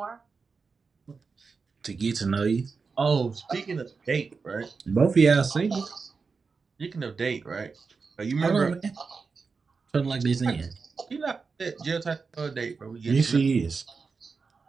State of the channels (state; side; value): quieter; left; 4.8 dB